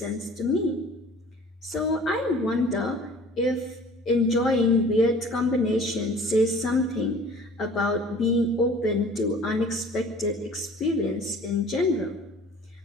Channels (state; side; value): normal; both; correlation 0.47